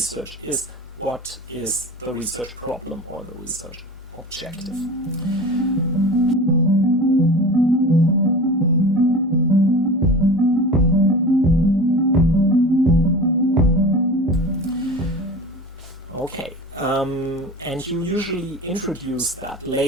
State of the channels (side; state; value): both; normal; correlation 0.34